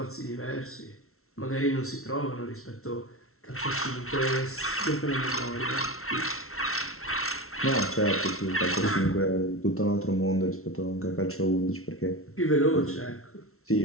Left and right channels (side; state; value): right; late; 0.63 ms